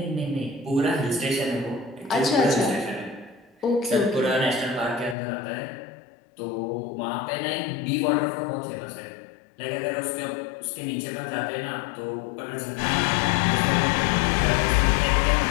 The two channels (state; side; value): drops out; right; at 5.2 s